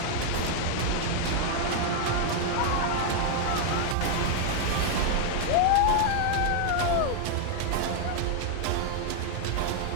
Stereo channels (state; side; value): different; both; correlation 0.00